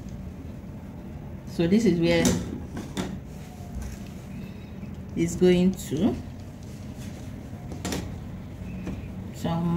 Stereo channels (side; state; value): both; identical; correlation 1.00